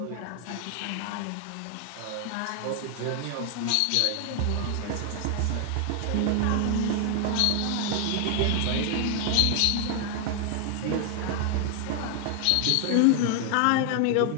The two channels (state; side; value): different; both; correlation 0.00